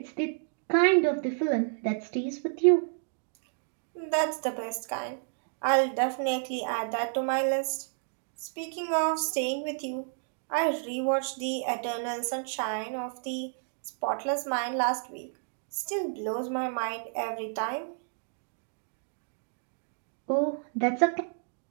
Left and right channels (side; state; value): left; silent; digital silence